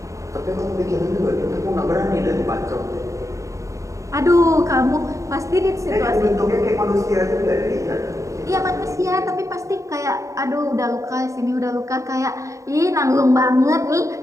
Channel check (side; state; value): left; late; 0.15 ms